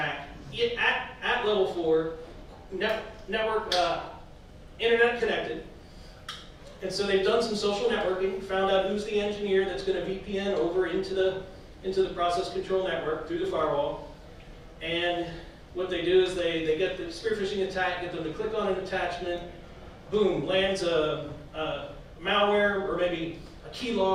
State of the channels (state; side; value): identical; both; correlation 1.00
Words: at level 4, network, internet connected, And so they've done some social networking, found out who's the engineer that's going to VPN over into the process control network through the firewall. And what they do is they get the spear phishing attack, get them to click on an attachment, boom, lands a malware or maybe a